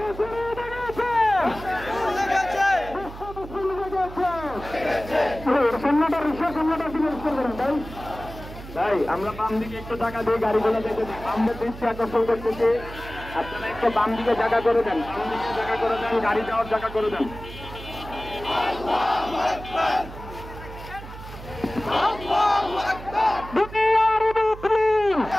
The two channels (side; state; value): right; noise; hum, 14 dB below the sound